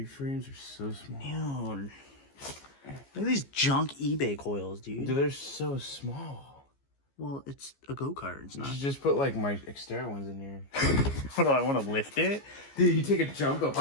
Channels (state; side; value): late; right; 15 ms